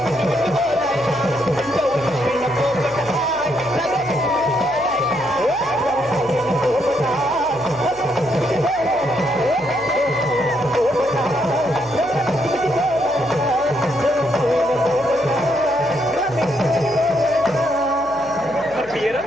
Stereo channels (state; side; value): noise; left; hum, 22 dB below the sound